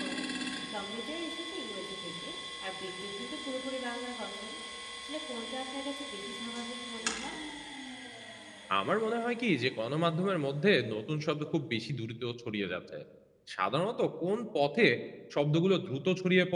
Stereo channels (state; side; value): identical; both; correlation 1.00